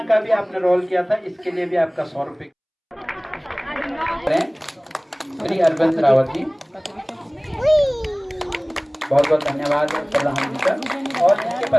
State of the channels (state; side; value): identical; both; correlation 1.00